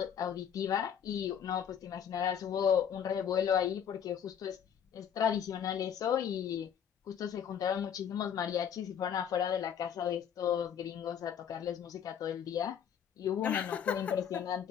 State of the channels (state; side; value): quieter; right; 8.4 dB